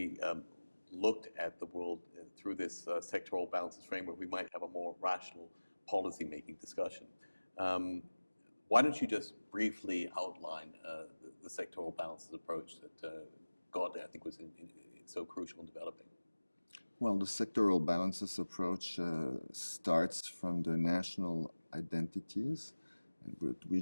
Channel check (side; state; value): both; inverted; correlation -1.00